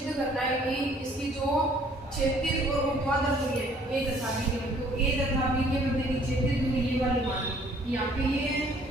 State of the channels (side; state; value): both; normal; correlation 0.58